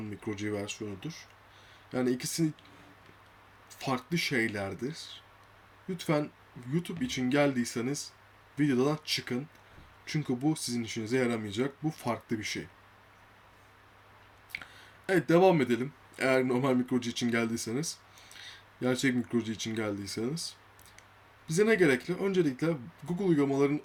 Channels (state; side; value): identical; both; correlation 1.00